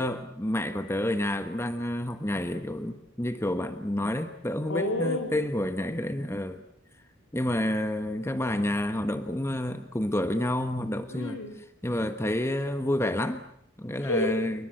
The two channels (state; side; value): normal; both; correlation 0.72